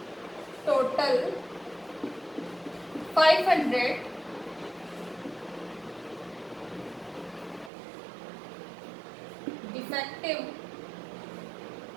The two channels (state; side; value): drops out; left; at 7.7 s